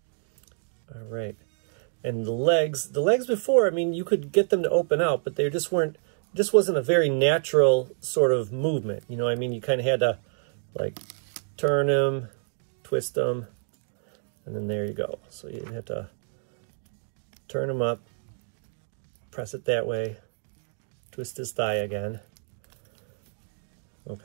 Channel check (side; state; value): left; silent; digital silence